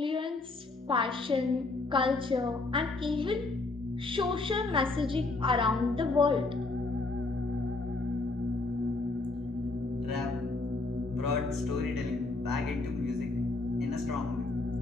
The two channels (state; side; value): quieter; right; 3.4 dB